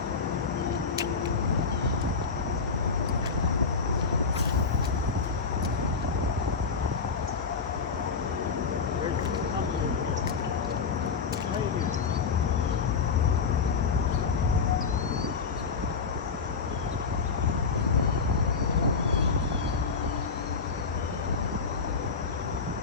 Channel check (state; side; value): quieter; right; 5.2 dB